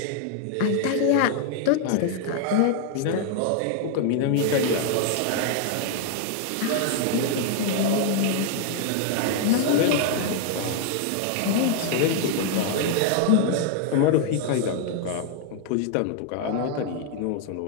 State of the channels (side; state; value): both; different; correlation 0.00